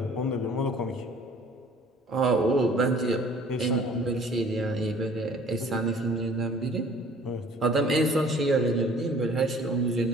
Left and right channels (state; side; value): normal; both; correlation 0.52